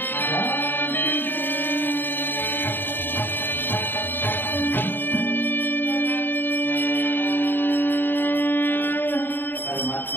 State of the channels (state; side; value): late; right; 0.095 ms